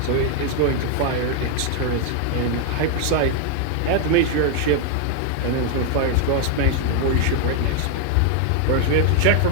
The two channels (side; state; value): both; different; correlation 0.00